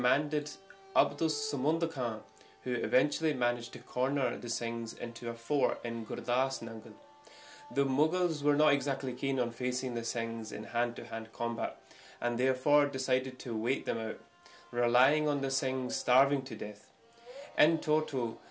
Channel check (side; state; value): both; identical; correlation 1.00